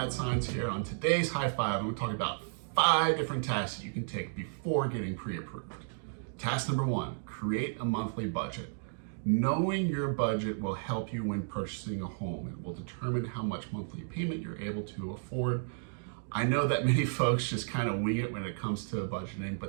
Science here. On today's High Five, I'm going to talk about 5 different tasks that you can take before getting pre-approved. Task number 1, create a monthly budget. Knowing your budget will help you when purchasing a home. It will determine how much monthly payment you're able to afford. I know that many folks just kind of wing it when it comes to budgeting,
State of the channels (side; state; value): left; silent; digital silence